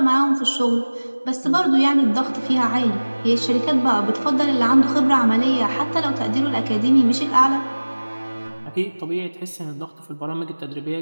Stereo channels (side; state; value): both; inverted; correlation -1.00